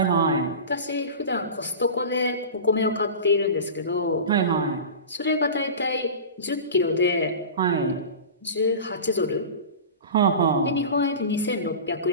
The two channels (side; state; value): both; inverted; correlation -0.31